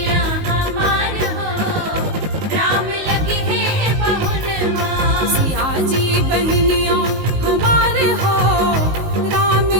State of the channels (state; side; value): late; left; 19 ms